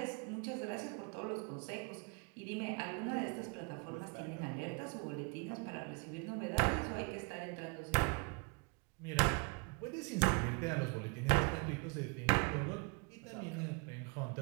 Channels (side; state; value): left; quieter; 33.6 dB